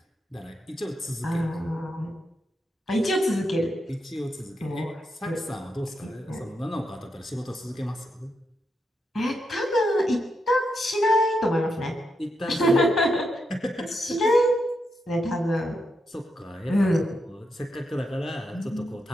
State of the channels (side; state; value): both; normal; correlation 0.83